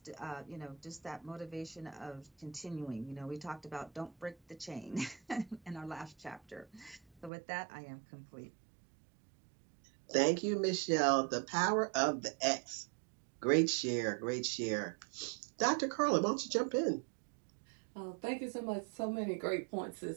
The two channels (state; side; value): drops out; left; at 7.3 s